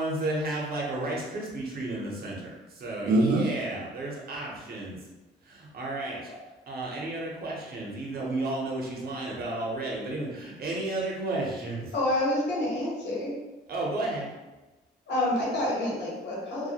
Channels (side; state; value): both; normal; correlation 0.47